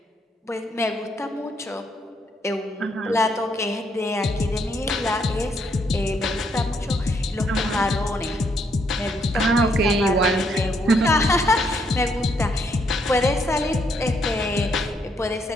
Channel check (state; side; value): normal; both; correlation 0.73